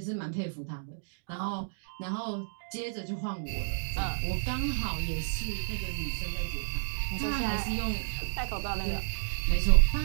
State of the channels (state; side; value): silent; left; digital silence